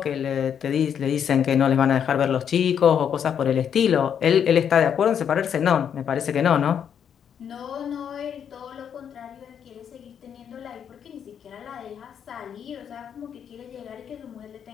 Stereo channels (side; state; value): right; quieter; 8.2 dB